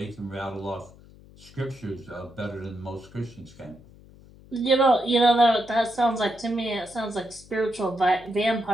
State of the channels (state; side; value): noise; left; hum, 23 dB below the sound